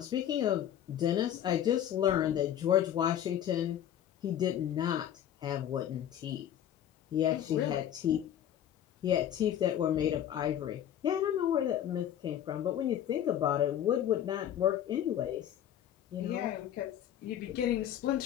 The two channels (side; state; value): right; quieter; 10.6 dB